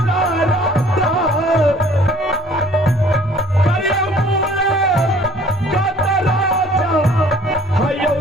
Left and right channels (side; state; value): both; normal; correlation 0.54